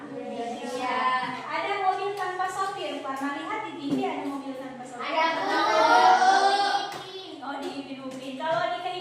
Indonesia. Ada mobil tanpa sopir. Pernah lihat di TV ada mobil tanpa sopir? Ada. Oh, di Upin. Kalau di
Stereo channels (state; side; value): identical; both; correlation 1.00